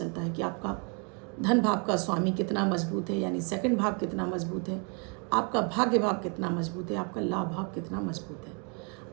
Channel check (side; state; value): left; quieter; 36.1 dB